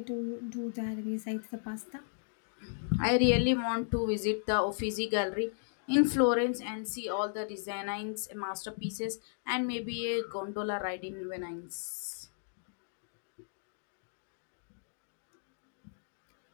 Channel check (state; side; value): silent; right; digital silence